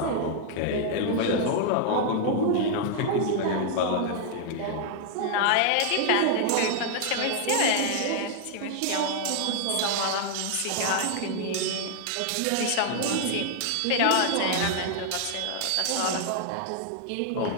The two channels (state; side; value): different; both; correlation 0.00